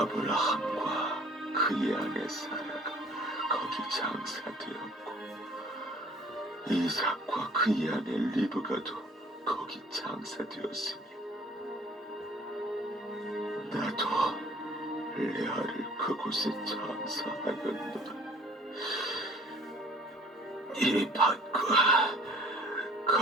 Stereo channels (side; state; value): both; normal; correlation 0.52